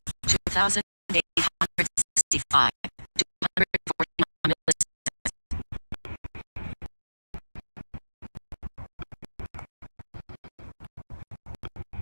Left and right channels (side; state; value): both; inverted; correlation -1.00